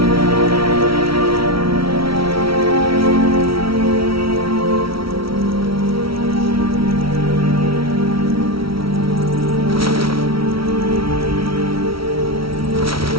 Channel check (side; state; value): left; late; 0.75 ms